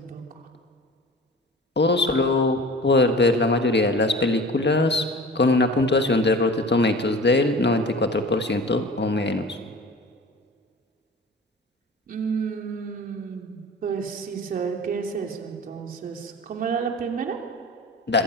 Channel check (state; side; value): normal; both; correlation 0.40